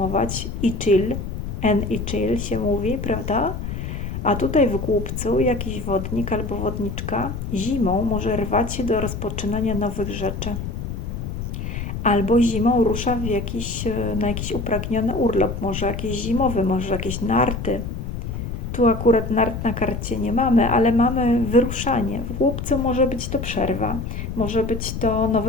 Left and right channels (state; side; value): noise; left; rumble, 5 dB below the sound